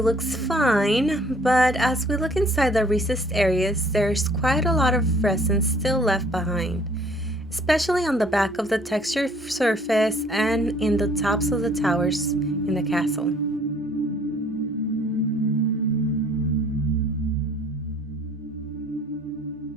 looks fine, but as we look inside the recessed areas, there's quite a lot of resin still left behind, especially on the back of the textured surface and in the tops of the towers in the castle.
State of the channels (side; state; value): both; normal; correlation 0.57